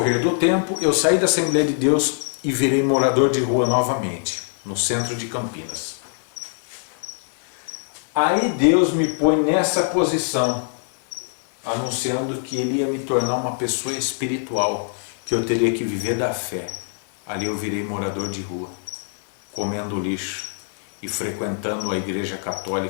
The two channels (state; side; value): silent; right; digital silence